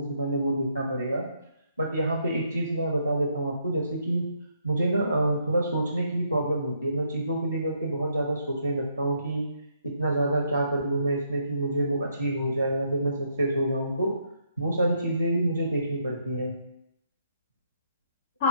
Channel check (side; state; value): both; inverted; correlation -0.74